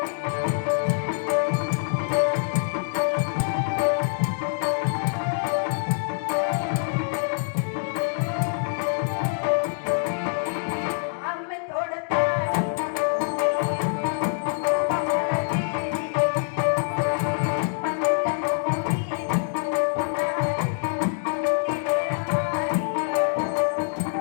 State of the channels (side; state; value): right; silent; digital silence